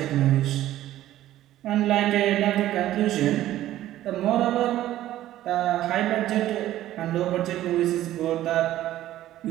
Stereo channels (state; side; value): quieter; left; 13.8 dB